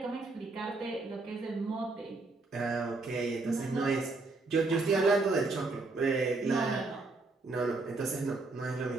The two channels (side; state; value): left; quieter; 3.5 dB